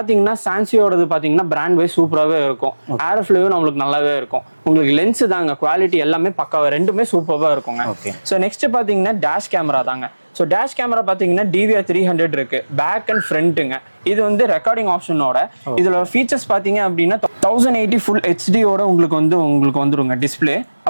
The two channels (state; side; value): inverted; both; correlation -1.00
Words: சான்சியோடது பாத்தீங்கன்னா பிராண்ட் வைஸ் சூப்பராகவே இருக்கும், ஏரோஃப்ளேவும் நம்மளுக்கு நல்லாவே இருக்கும். உங்களுக்கு லென்ஸ் தாங்க குவாலிட்டி எல்லாமே பக்காவா ரெண்டுமே சூப்பராக இருக்குங்க. ஸோ நெக்ஸ்ட் பாத்தீங்கன்னா டேஷ் கேமரா தாங்க. ஸோ டேஷ் கேமரா பார்த்தீங்கன்னா DVR 300 இருக்கு, பேக் அண்ட் ஃப்ரண்ட்டுங்க. இது வந்து ரெக்கார்டிங் ஆப்ஷனோட இதுல ஃபீச்சர்ஸ் பார்த்தீங்க அப்படின்னா 1080 ஃபுல் ஹெச்டியோட உங்களுக்கு வந்துருங்க டிஸ்பிளே.